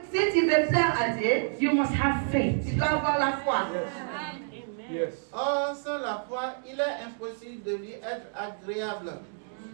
que si tu veux plaire à Dieu, you must have faith. tu dois avoir la foi. Or, sans la foi, il est impossible de lui être agréable.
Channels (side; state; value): left; silent; digital silence